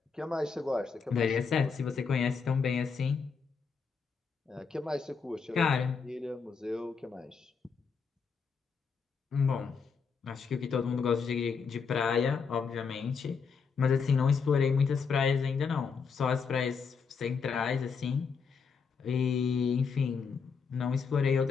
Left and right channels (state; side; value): quieter; right; 5.7 dB